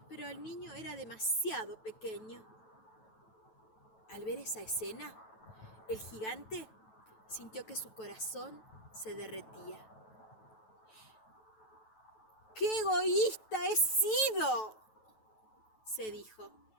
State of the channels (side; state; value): right; late; 9.2 ms